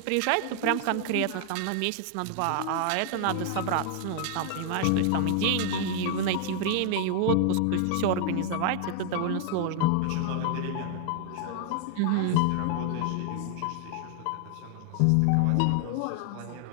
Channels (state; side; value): different; both; correlation 0.00